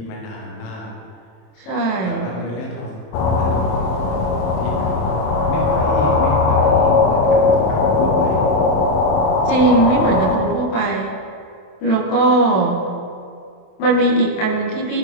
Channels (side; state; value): right; late; 27 ms